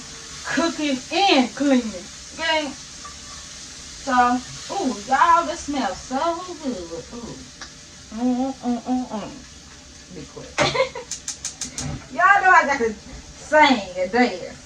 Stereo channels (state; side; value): identical; both; correlation 1.00